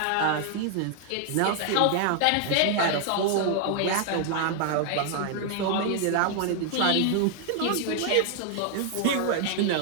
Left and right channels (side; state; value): both; different; correlation 0.00